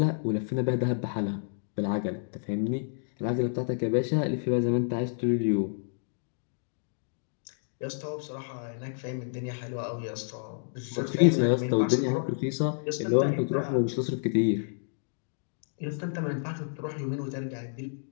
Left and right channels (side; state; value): right; silent; digital silence